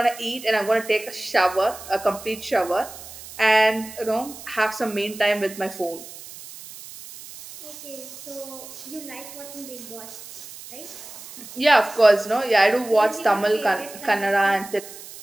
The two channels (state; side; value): noise; right; hiss, 15 dB below the sound